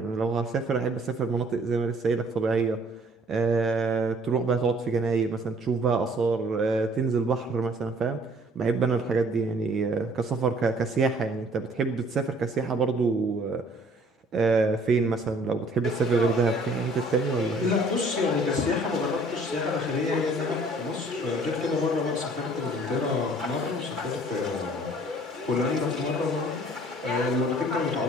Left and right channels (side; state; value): both; normal; correlation 0.56